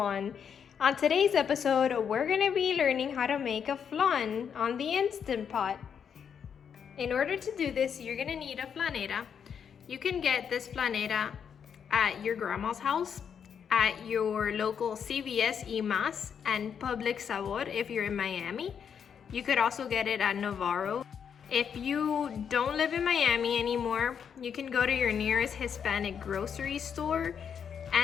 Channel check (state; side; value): quieter; right; 7.5 dB